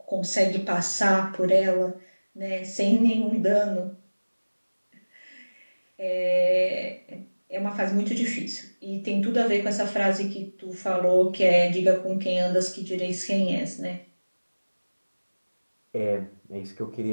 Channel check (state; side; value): inverted; both; correlation -1.00